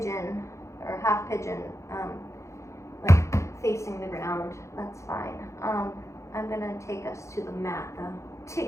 or half pigeon, like facing the ground, that's fine. I'm gonna take us to the mat though.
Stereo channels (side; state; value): right; late; 0.14 ms